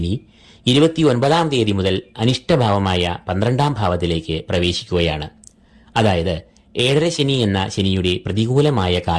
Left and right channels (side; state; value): both; identical; correlation 1.00